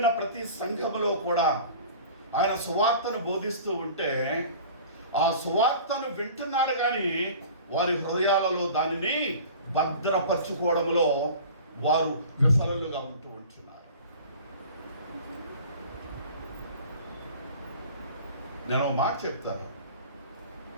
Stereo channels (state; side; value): inverted; both; correlation -0.42